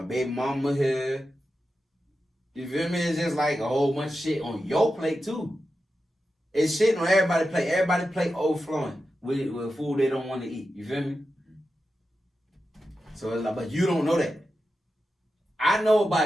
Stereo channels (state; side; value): normal; both; correlation 0.91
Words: baby mama here. You feel me? It's just like a whole bunch of shit on your plate too. It's shit on everybody's plate. Everybody's plate overflowing with food they don't want to eat. You feel me? So it's like, but you don't know that. I know